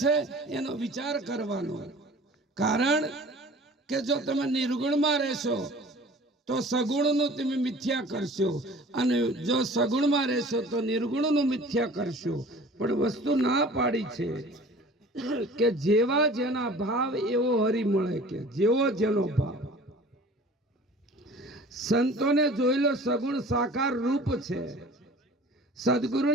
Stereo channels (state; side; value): normal; both; correlation 0.45